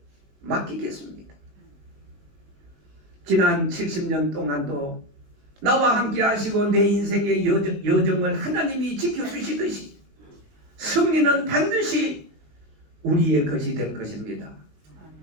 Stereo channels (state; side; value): late; left; 19 ms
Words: 맡기겠습니다. 지난 70년 동안도 나와 함께 하시고 내 인생의 여정을 하나님이 지켜주시듯이 승리는 반드시 우리의 것이 될 것입니다.